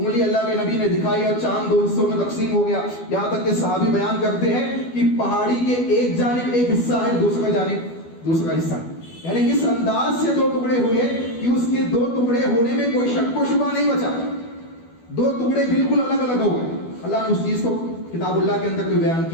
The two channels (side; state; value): right; late; 12 ms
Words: اللہ کے نبی نے دکھائی اور چاند دو حصوں میں تقسیم ہو گیا، یہاں تک کہ صحابی بیان کرتے ہیں کہ پہاڑی کے ایک جانب ایک حصہ ہے، دوسرا جانب دوسرا حصہ ہے، یعنی اس انداز سے دو ٹکڑے ہوئے کہ اس کے دو ٹکڑے ہونے میں کوئی شک و شبہ نہیں بچا، دو ٹکڑے بالکل الگ الگ ہو گئے۔ اللہ نے اس چیز کو کتاب اللہ کے اندر بھی بیان